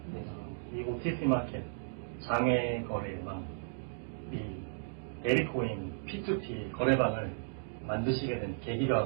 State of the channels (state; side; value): silent; left; digital silence